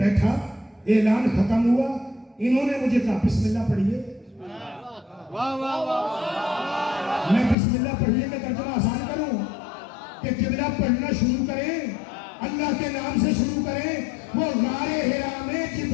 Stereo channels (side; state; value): right; drops out; at 7.6 s